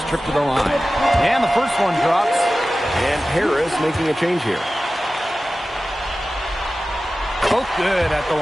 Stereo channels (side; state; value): both; normal; correlation 0.95